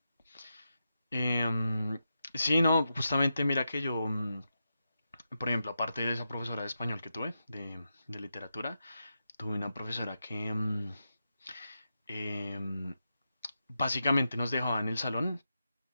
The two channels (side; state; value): both; inverted; correlation -0.88